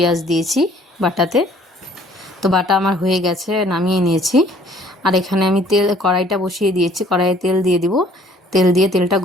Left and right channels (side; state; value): both; normal; correlation 0.57